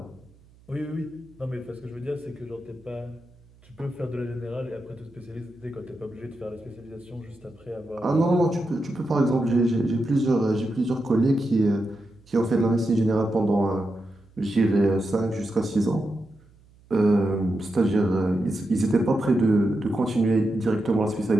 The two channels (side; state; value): right; noise; hum, 28 dB below the sound